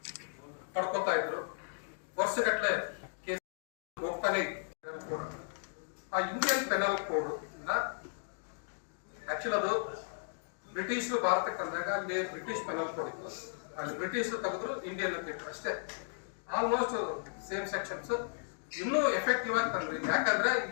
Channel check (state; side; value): silent; right; digital silence